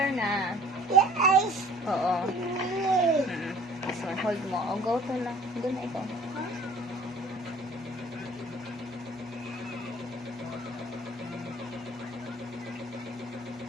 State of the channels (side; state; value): both; normal; correlation 0.52